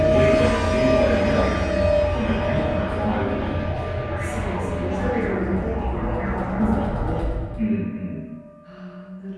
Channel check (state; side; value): identical; both; correlation 1.00